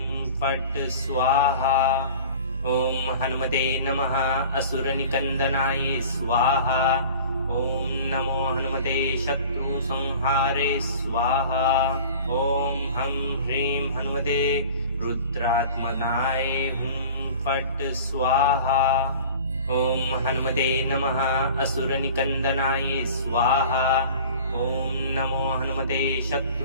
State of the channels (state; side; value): inverted; both; correlation -0.42